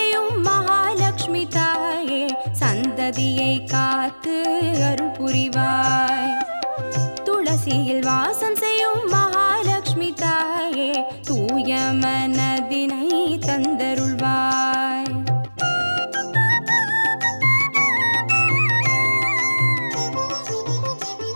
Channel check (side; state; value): both; inverted; correlation -1.00